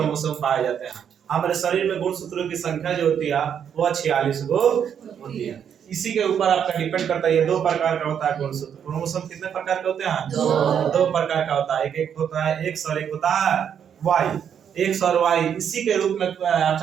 पाए जाते हैं। हमारे शरीर में गुणसूत्रों की संख्या जो होती है वो 46 गो होती है। इसी के ऊपर आपका डिपेंड करता है, ये दो प्रकार का होता है गुणसूत्र। क्रोमोसोम कितने प्रकार के होते हैं, दो प्रकार का होता है। एक होता है एक्स और एक होता है वाई। एक्स और वाई इसी के रूप में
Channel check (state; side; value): quieter; left; 8.3 dB